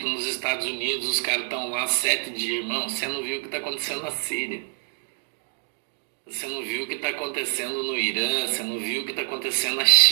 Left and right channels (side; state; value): left; silent; digital silence